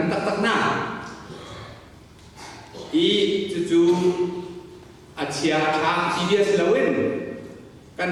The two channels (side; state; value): both; identical; correlation 1.00